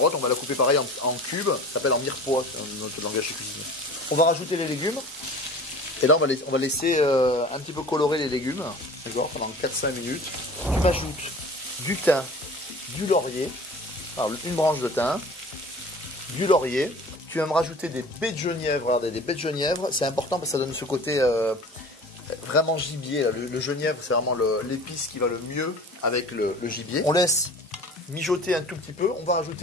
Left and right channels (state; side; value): normal; both; correlation 0.41